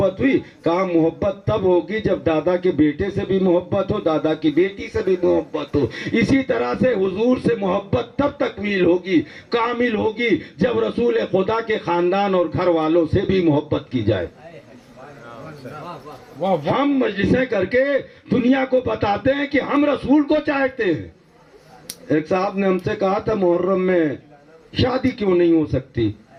ہوئی؟ کہا محبت تب ہوگی جب دادا کے بیٹے سے بھی محبت ہو، دادا کی بیٹی سے بھی محبت ہو۔ اسی طرح سے حضور سے محبت تب تکمیل ہوگی، کامل ہوگی، جب رسول خدا کے خاندان اور گھر والوں سے بھی محبت کی جائے۔ واہ واہ ہم مجلسیں کر کے دنیا کو بتاتے ہیں کہ ہم رسول کو چاہتے ہیں۔ ایک صاحب نے ہم سے کہا تھا محرم میں شادی کیوں نہیں ہو سکتی؟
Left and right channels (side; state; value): both; identical; correlation 1.00